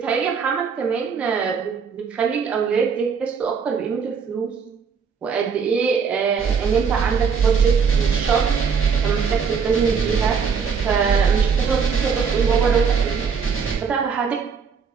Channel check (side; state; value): left; quieter; 6.1 dB